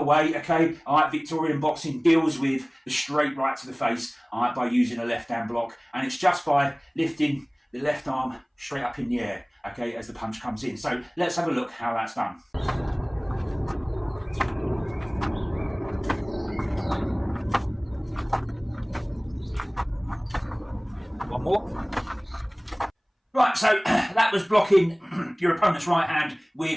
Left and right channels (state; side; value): identical; both; correlation 1.00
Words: way, okay? Victorian boxing deals with the straight right to the face by using a left hand block, and it's just by lifting the left arm straight up in the air, okay, as the punch comes in. So let's have a look how that's done. One more. Right, so that was blocking your opponent's right hand